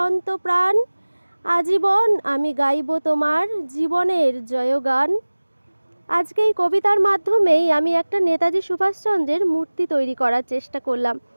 আজীবন আমি গাইব তোমার জীবনের জয়গান। আজকে এই কবিতার মাধ্যমেই আমি একটা নেতাজি সুভাষচন্দ্রের মূর্তি তৈরি করার চেষ্টা করলাম।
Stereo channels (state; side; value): inverted; both; correlation -1.00